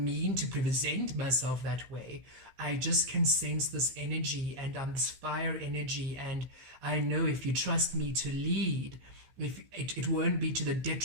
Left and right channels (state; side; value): late; left; 15 ms